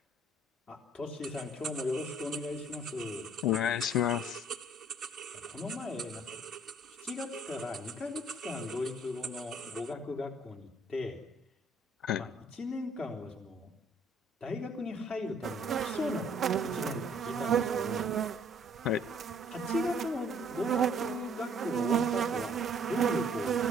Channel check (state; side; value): normal; both; correlation 0.59